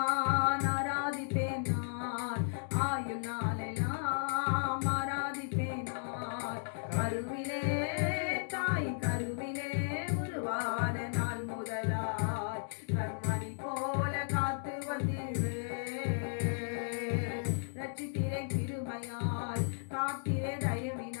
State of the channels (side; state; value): right; silent; digital silence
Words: ஆராதிப்பேன் நான், ஆயுளாலெல்லாம் ஆராதிப்பேன் நான். கருவிலே தாய் கருவிலே உருவான நாள் முதலாய் கண்மணி போல காத்து வந்தீரே. ரட்சித்திரை கிருபையால் காத்திரே